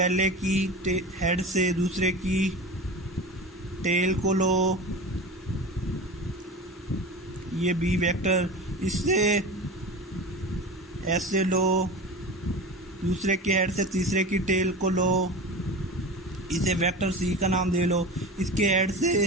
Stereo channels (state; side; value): normal; both; correlation 0.31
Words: की हेड से दूसरे की टेल को लो, ये बी वेक्टर, इससे ऐसे लो, दूसरे के हेड से तीसरे की टेल को लो, इसे वेक्टर सी का नाम दे लो, इसके हेड